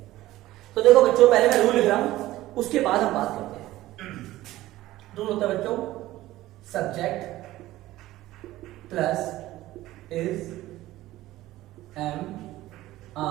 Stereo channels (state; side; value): quieter; left; 16.2 dB